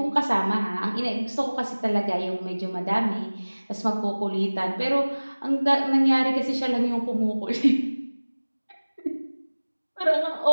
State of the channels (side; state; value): both; inverted; correlation -1.00